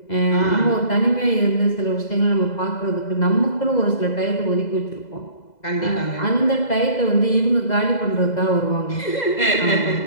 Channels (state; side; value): late; right; 2.0 ms